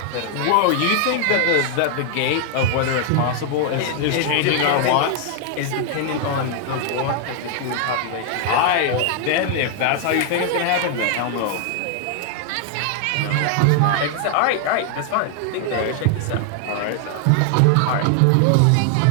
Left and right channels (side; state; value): both; different; correlation 0.00